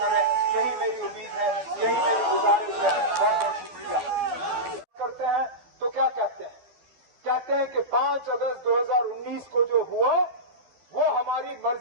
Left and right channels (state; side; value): late; left; 12 ms